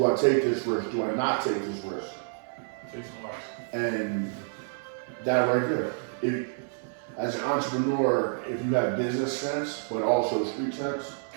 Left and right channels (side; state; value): left; silent; 57 dB below the other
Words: I take this risk? Do I not take this risk? Take some risks. And that right there. As an entrepreneur, if you have business sense, but also street sense,